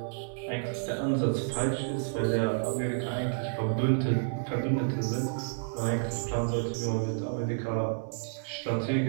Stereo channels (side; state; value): left; silent; 58 dB below the other